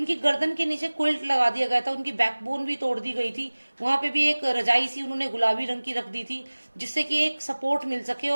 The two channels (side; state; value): both; inverted; correlation -1.00